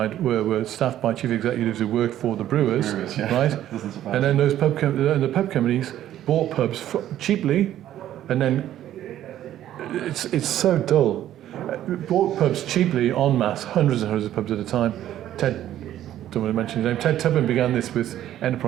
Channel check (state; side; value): quieter; left; 12.2 dB